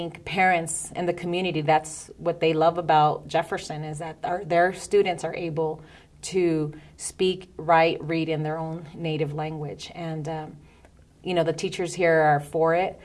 parents in the community, that's what they love about Jefferson, is that their students are able to speak, write, read in their own native language. And, the teachers here are for it.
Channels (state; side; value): identical; both; correlation 1.00